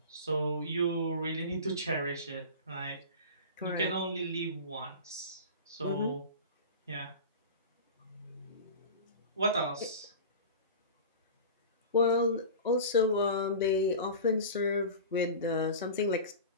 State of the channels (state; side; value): inverted; both; correlation -0.34